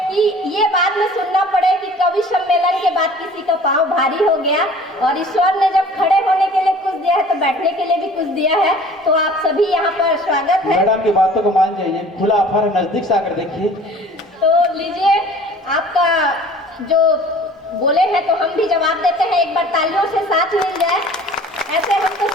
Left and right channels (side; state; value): both; normal; correlation 0.47